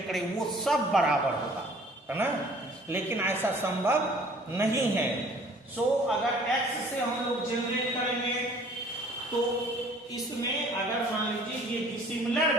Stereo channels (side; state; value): both; normal; correlation 0.53